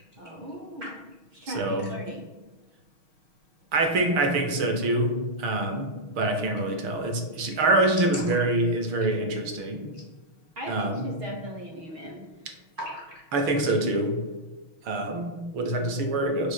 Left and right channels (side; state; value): left; late; 6.3 ms